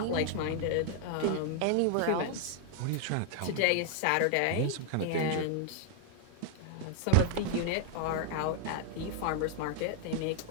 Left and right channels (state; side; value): different; both; correlation 0.00